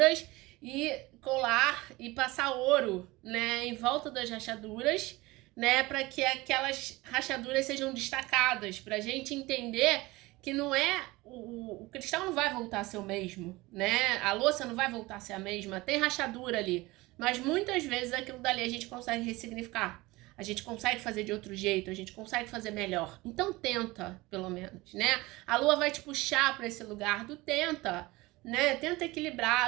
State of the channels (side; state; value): left; quieter; 21.0 dB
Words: e colar e passar ouro, né, em volta das rachaduras, né, para que aquelas rachaduras sejam destacadas, para a gente entender que não é o cristal não vai voltar a ser o mesmo, né? A louça não vai voltar a ser a mesma, tem rachadura ali, mas muitas vezes aquilo dali a gente consegue ressignificar. A gente consegue fazer de outro jeito, a gente consegue fazer melhor. Então tenta, pelo menos, né? A lua vai te puxar para esse lugar do tenta, né? Tenta